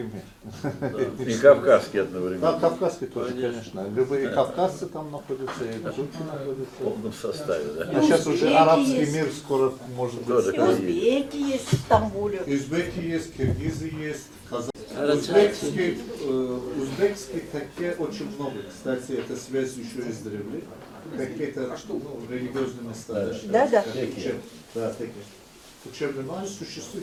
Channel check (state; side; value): identical; both; correlation 1.00